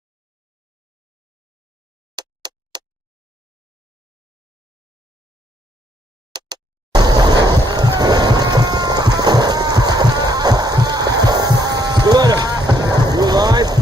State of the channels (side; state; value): both; normal; correlation 0.70